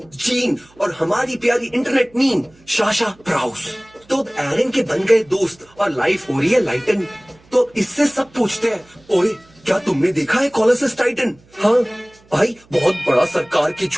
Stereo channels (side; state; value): right; noise; hum, 30 dB below the sound